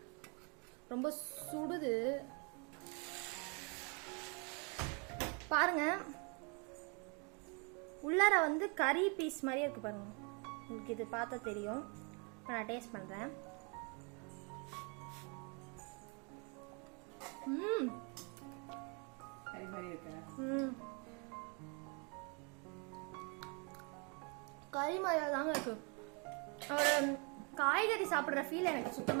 ரொம்ப சுடுது பாருங்க. உள்ளார வந்து கறி பீஸ் மாதிரியே இருக்கு பாருங்க. உங்களுக்கு இது பார்த்தா தெரியும். இப்போ நான் டேஸ்ட் பண்ணுறேன். கறி மாதிரியா தாங்க இருக்கு. ஒரு காய்கறி சாப்பிட்ற ஃபீல் எனக்கு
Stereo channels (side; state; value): left; quieter; 34.4 dB